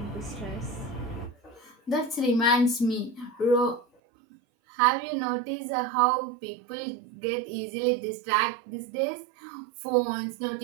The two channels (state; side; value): drops out; left; at 3.9 s